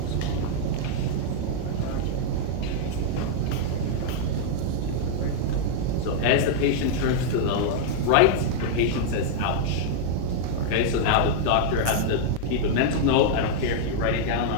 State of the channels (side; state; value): both; different; correlation -0.01